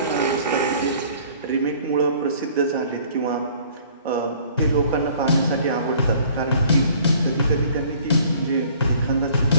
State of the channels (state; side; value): inverted; both; correlation -0.54